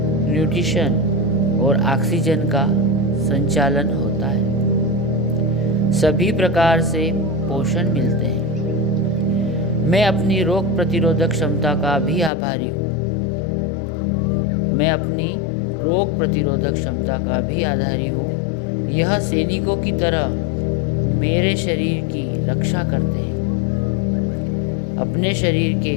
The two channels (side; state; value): right; drops out; at 12.3 s